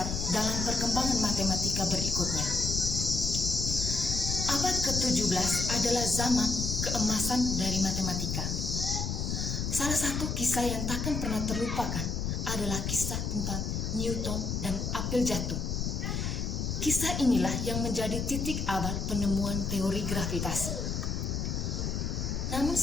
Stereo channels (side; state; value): left; noise; rumble, 1 dB below the sound